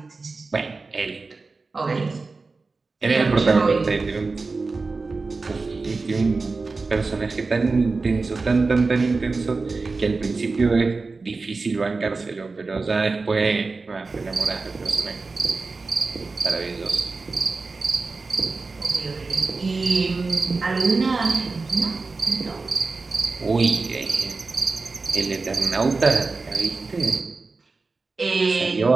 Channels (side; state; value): left; quieter; 3.9 dB